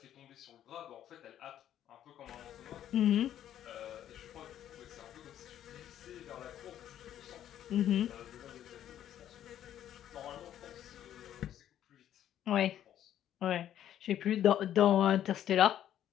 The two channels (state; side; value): quieter; right; 11.0 dB